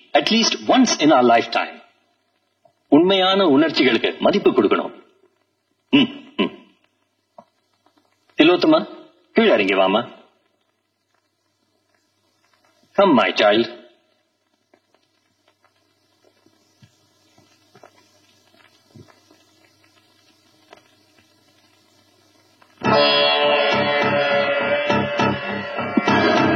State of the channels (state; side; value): identical; both; correlation 1.00